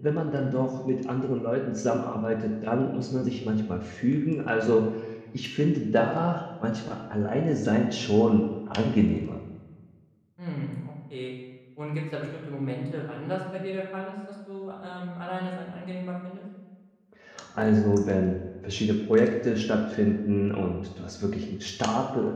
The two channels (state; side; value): identical; both; correlation 1.00